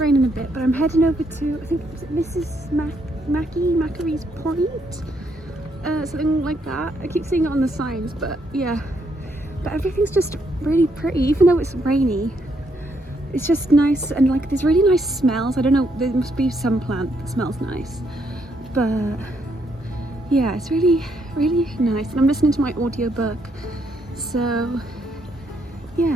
a bit, but I'm heading over to, I think it's Mrs. Macary's Point, something like that. I keep seeing it on the signs, but yeah. But everything's just really pretty, even though it's rainy. It's just nice, and like there's really nice smells. I don't know, there must be some plant that smells nice, but yeah, it's really, really nice. And I'm listening to my audiobook, so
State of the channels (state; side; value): normal; both; correlation 0.74